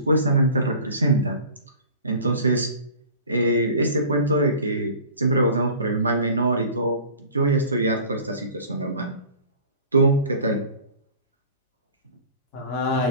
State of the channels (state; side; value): inverted; both; correlation -0.43